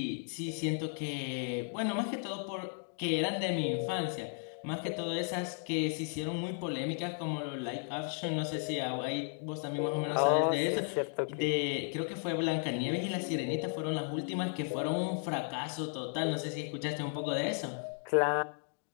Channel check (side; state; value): right; silent; 55 dB below the other